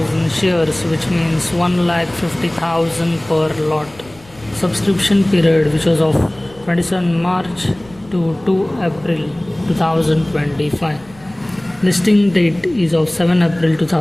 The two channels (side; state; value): left; noise; rumble, 25 dB below the sound